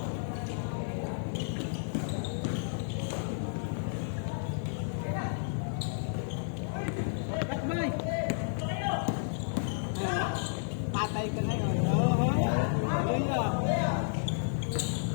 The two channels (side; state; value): right; silent; digital silence